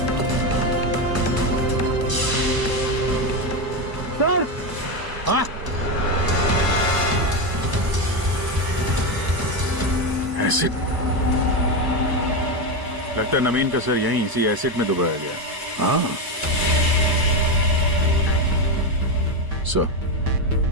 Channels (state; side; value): late; left; 1.0 ms